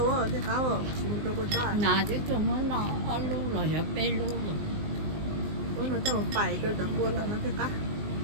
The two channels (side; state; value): left; late; 19 ms